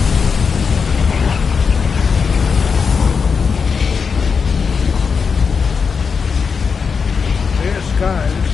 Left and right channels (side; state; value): right; quieter; 5.7 dB